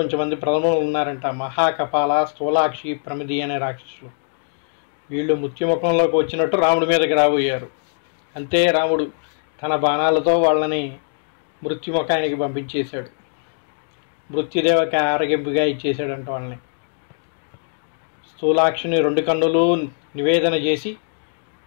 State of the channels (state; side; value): silent; right; digital silence